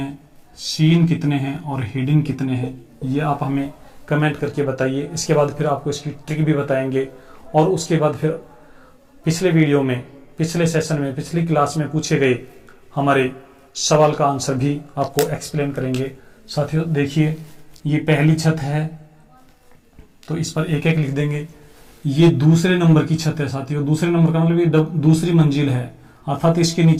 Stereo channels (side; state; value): both; identical; correlation 1.00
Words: सीन कितने हैं और हिडन कितने हैं, ये आप हमें कमेंट करके बताइए। इसके बाद फिर आपको इसकी ट्रिक भी बताएंगे और उसके बाद फिर पिछले वीडियो में, पिछले सेशन में, पिछली क्लास में पूछे गए हमारे सवाल का आंसर भी आपको एक्सप्लेन करेंगे। साथियों देखिए ये पहली छत है तो इस पर एक एक लिख देंगे। ये दूसरे नंबर की छत है साथियों, दूसरे नंबर का मतलब ये दूसरी मंजिल है, अर्थात इसके